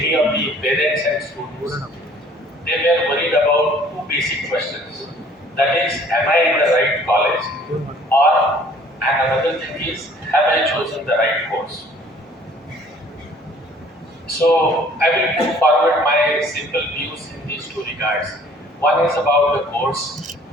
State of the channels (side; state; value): both; normal; correlation 0.55